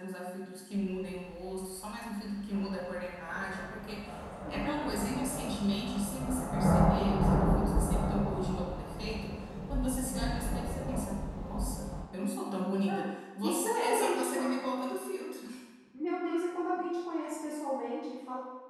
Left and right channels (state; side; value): identical; both; correlation 1.00